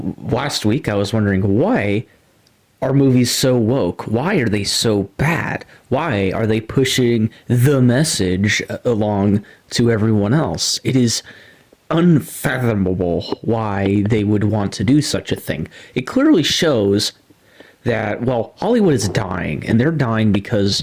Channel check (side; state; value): both; identical; correlation 1.00